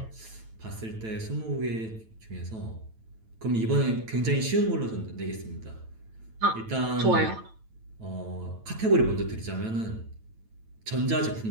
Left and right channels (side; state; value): left; late; 9.0 ms